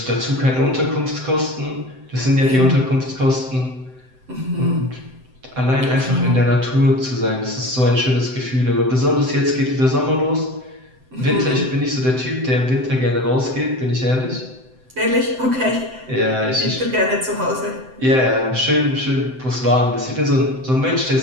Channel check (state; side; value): late; left; 7.8 ms